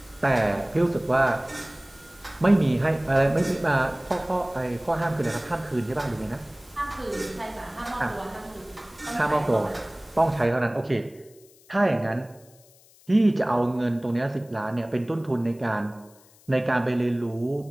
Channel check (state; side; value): noise; left; hiss, 27 dB below the sound